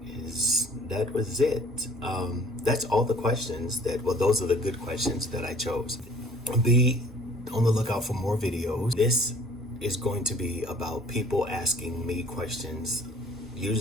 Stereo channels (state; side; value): normal; both; correlation 0.54